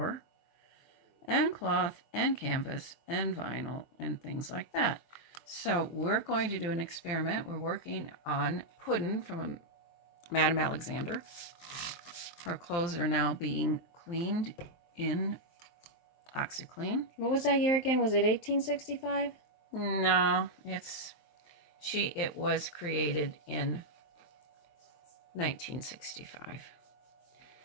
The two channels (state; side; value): late; right; 23 ms